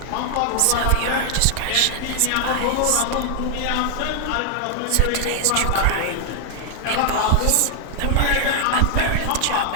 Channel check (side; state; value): both; different; correlation 0.00